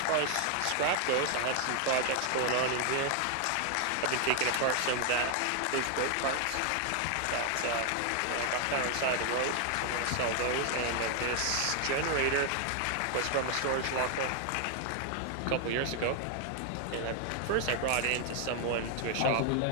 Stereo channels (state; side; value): different; both; correlation 0.00